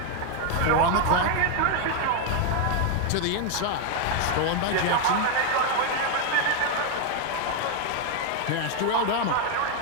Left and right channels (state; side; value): different; both; correlation 0.01